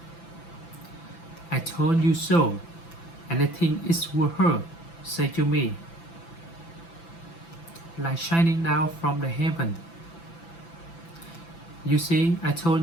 "I told you so," and I think it was her say to me, like shining down from the heaven. "You see, I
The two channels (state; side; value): late; right; 5.9 ms